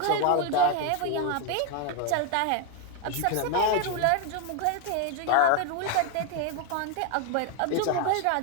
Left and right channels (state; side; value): different; both; correlation 0.01